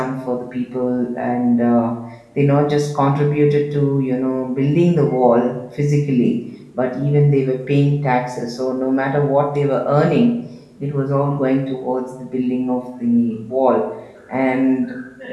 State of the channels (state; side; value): identical; both; correlation 1.00